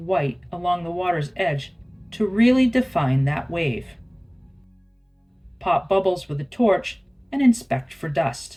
along the water's edge to really define that wave. Pop bubbles with a torch and inspect for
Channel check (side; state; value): both; identical; correlation 1.00